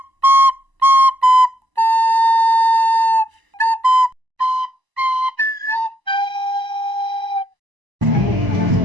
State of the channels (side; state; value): left; late; 1.0 ms